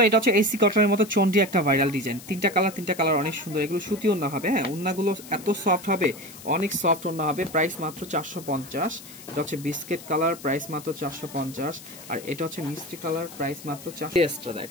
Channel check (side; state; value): left; noise; hiss, 17 dB below the sound